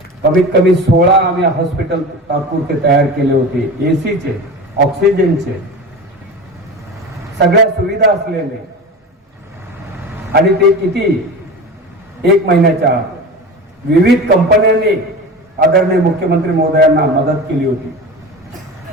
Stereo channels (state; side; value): normal; both; correlation 0.30